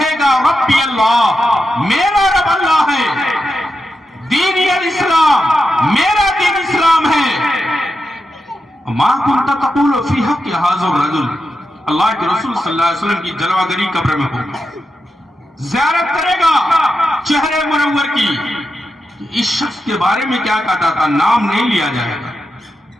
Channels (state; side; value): normal; both; correlation 0.88